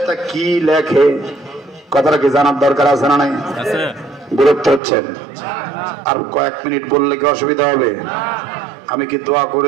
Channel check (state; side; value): drops out; left; at 4.8 s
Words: কি লেখে? কথাটা কি জানার দরকার আছে না নাই? বিরক্ত হচ্ছেন? আর কয়েক মিনিট বললে কি অসুবিধা হবে? আমি কি দোয়া